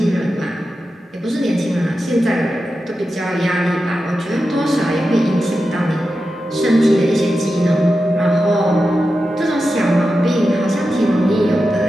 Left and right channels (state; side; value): normal; both; correlation 0.91